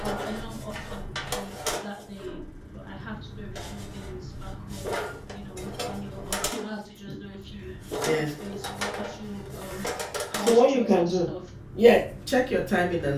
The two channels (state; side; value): identical; both; correlation 1.00